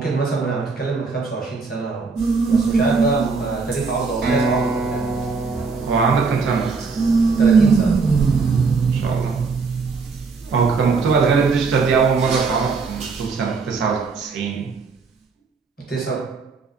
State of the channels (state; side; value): quieter; left; 4.6 dB